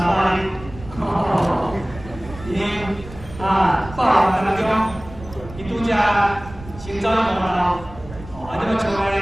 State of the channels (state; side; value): noise; right; rumble, 16 dB below the sound